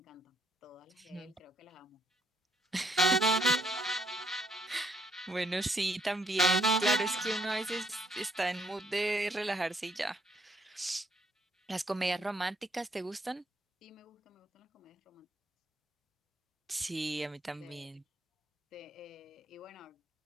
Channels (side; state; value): both; normal; correlation 0.68